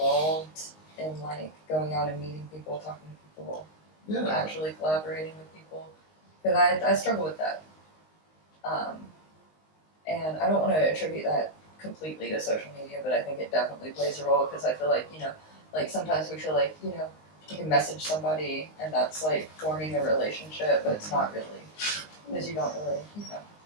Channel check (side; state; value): right; late; 19 ms